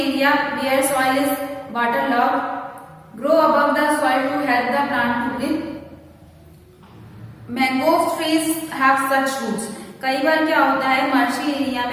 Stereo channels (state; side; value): identical; both; correlation 1.00